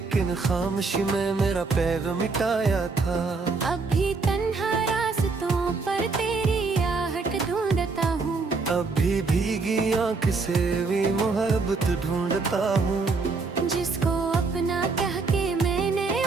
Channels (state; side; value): quieter; left; 4.2 dB